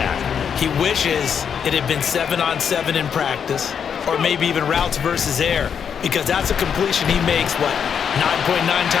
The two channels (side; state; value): right; quieter; 7.4 dB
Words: He wishes it had been 7-on-7 in practice, or maybe even routes versus air, because that's a completion he makes, 9.9